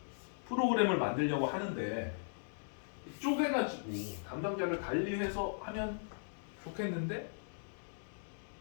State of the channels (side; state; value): right; silent; digital silence